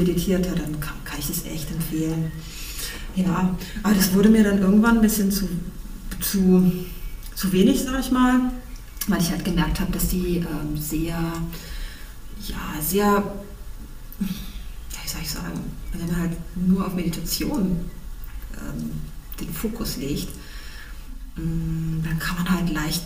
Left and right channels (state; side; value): identical; both; correlation 1.00